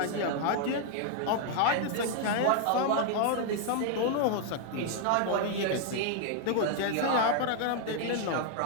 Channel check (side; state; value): both; different; correlation 0.00